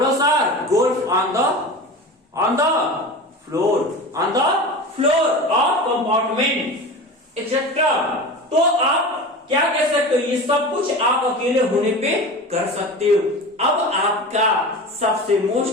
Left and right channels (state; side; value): normal; both; correlation 0.31